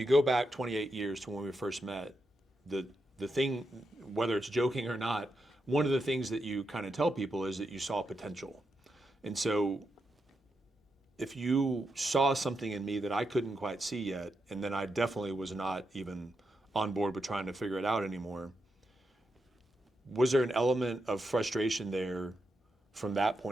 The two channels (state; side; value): normal; both; correlation 0.85